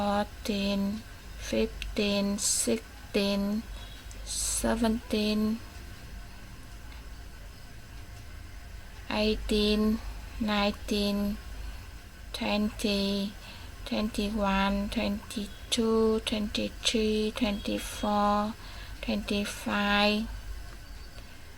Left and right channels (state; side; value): identical; both; correlation 1.00